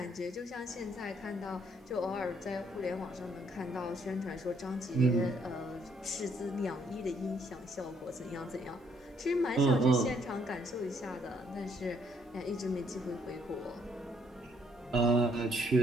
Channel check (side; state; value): both; normal; correlation 0.68